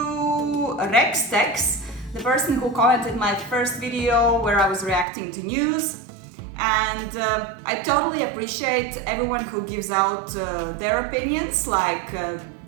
Rex Tex, the person who commented my first video where I was reacting to news. And I totally appreciate everyone who gives out their opinions, like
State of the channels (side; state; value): left; drops out; at 5.1 s